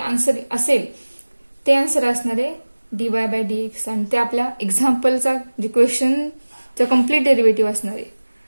असेल ते आन्सर असणार आहे dy बाय dx, आणि ते आपल्या एक्झाम्पलचा जे क्वेश्चनचा कम्प्लीट डेरिव्हेटिव्ह असणार आहे.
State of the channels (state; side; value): inverted; both; correlation -1.00